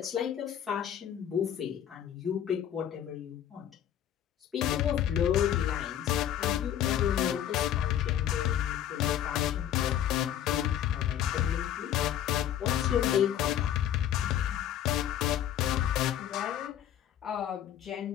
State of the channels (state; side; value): quieter; right; 10.6 dB